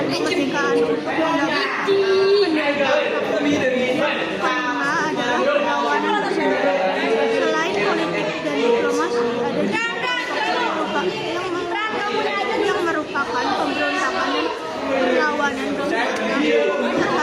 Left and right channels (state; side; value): identical; both; correlation 1.00